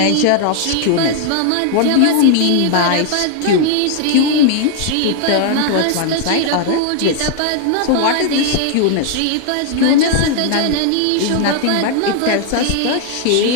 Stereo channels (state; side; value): different; both; correlation 0.00